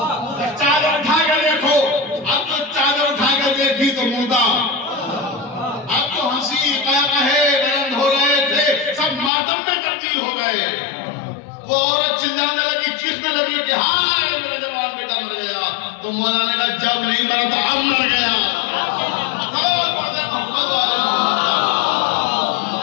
چادر اٹھا کے دیکھو. اب تو چادر اٹھا کے دیکھی تو مردہ. اب تو ہنسی قہقہے بلند ہو رہے تھے, سب ماتم میں تبدیل ہو گئے. وہ عورت چلانے لگی, چیخنے لگی کہ ہائے میرا جوان بیٹا مر گیا. تو مولا نے کہا جب نہیں مرا تو اب مر گیا.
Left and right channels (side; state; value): right; drops out; at 9.3 s